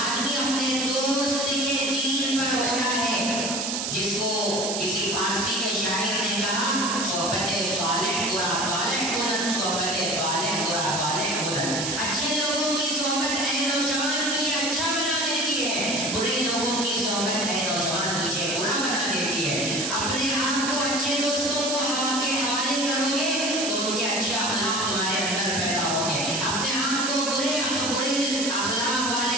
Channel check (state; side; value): noise; right; hiss, 2 dB below the sound